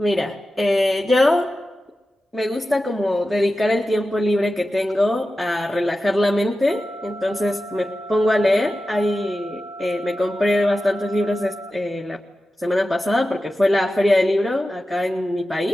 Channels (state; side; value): normal; both; correlation 0.93